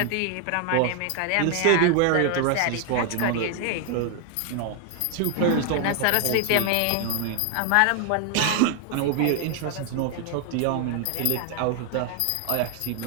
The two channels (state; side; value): different; both; correlation 0.00